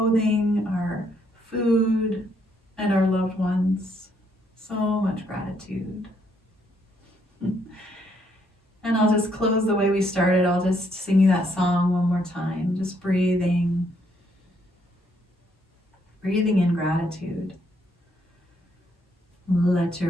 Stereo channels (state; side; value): normal; both; correlation 0.72